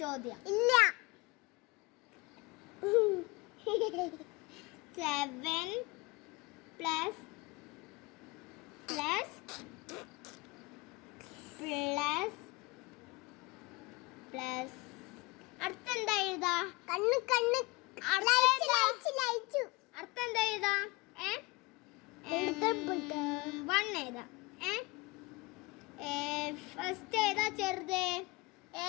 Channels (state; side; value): quieter; right; 24.0 dB